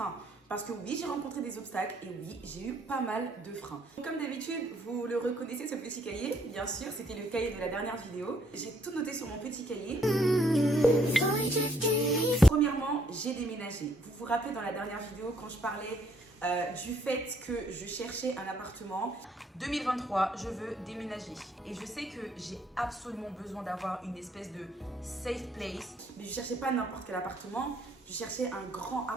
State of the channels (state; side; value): normal; both; correlation 0.68